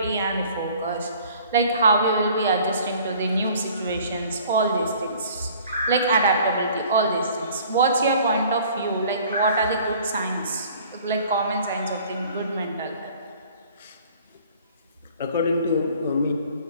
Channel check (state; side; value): inverted; both; correlation -0.52